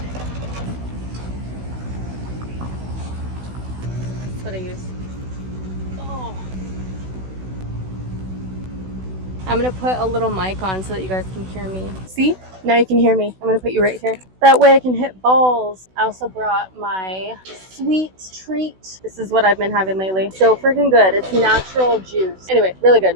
What I use. Oh. I'm gonna put a little mic on so that you guys can hear me. See? Now you can hear me. I'm gonna put you right here. That way I can hit balls. I also brought my sweet treat. This is what I've been having lately. So freaking good. It's natural juice. Anyway, really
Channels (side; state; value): left; late; 16 ms